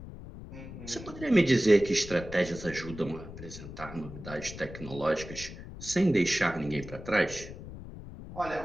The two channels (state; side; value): noise; left; rumble, 13 dB below the sound